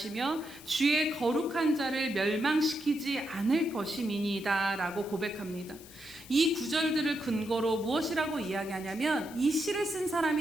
주의 거룩한 자를 멸망시키지 않을 것임이니이다 라고 고백합니다. 이 구절들을 근거로 무엇이라고 이야기하냐면 이 시를 쓴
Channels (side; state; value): left; noise; hiss, 19 dB below the sound